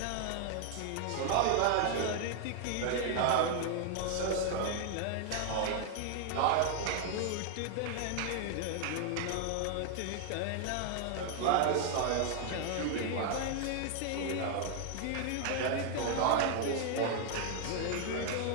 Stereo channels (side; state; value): both; different; correlation 0.00